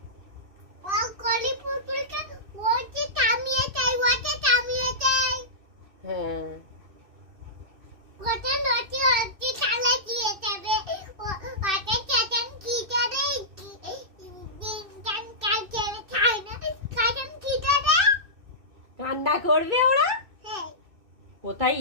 হ্যাঁ, কান্না করবে ওরা। কোথায়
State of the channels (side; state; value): left; late; 2.6 ms